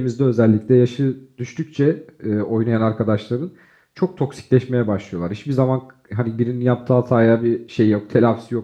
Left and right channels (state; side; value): identical; both; correlation 1.00